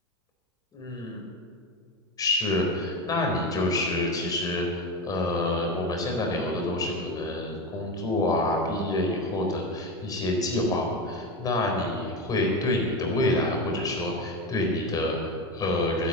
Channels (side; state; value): both; normal; correlation 0.20